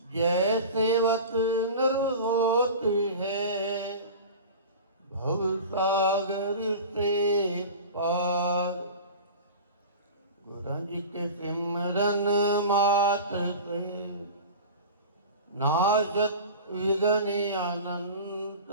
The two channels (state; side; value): inverted; both; correlation -0.34